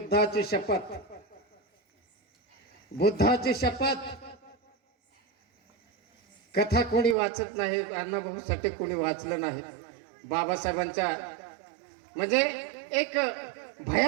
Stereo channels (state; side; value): drops out; left; at 7.2 s